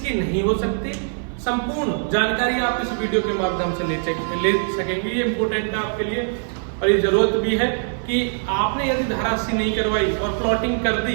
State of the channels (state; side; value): silent; left; 56 dB below the other